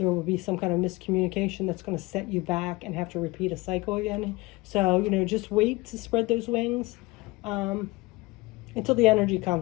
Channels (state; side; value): quieter; right; 22.6 dB